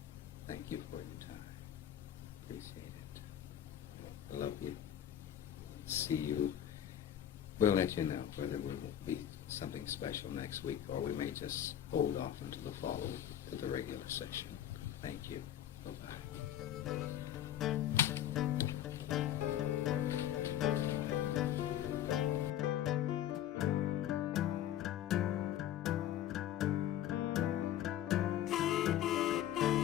Thank you for your time. Appreciate it. Love you. See you. We'll let you know whether it will be something special next week or we may just hold off until the follow to the regular session. Thank you. Bye-bye.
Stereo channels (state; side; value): quieter; right; 11.3 dB